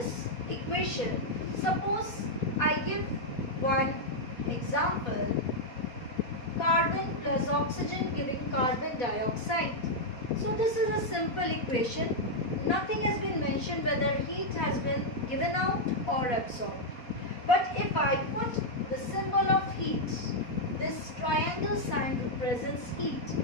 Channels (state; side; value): late; right; 4.2 ms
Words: equation, suppose I give one example, carbon plus oxygen giving carbon dioxide. So this is a simple equation. Nothing has been mentioned whether heat has been given out or absorbed. But if I put the symbol of heat, this triangle sign represents heat.